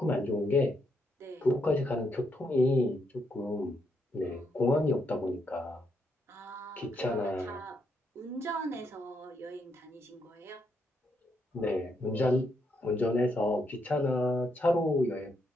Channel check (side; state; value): both; normal; correlation 0.78